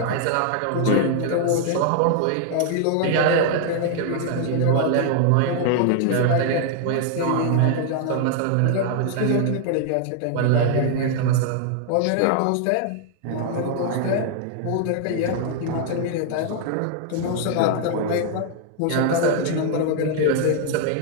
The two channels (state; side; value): different; both; correlation 0.00